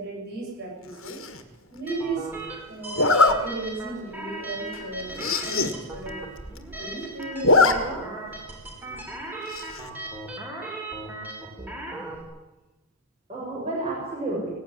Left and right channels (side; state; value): both; normal; correlation 0.00